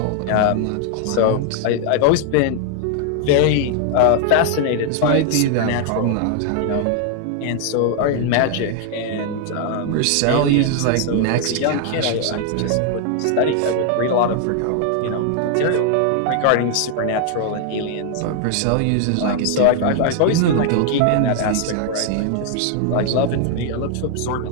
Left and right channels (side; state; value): both; different; correlation 0.00